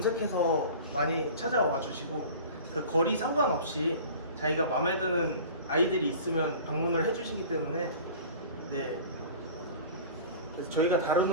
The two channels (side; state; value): both; inverted; correlation -0.40